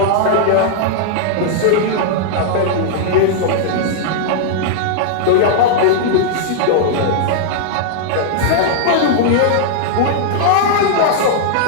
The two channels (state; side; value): different; both; correlation -0.02